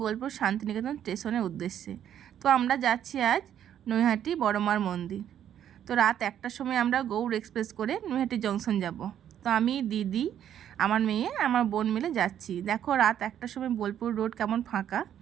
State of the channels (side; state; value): left; quieter; 10.1 dB